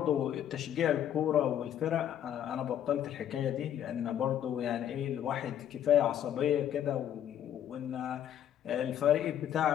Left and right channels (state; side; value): quieter; right; 10.4 dB